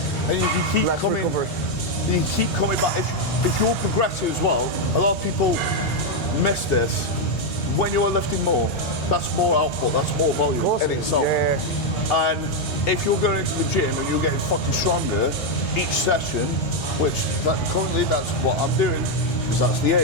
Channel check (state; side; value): normal; both; correlation 0.02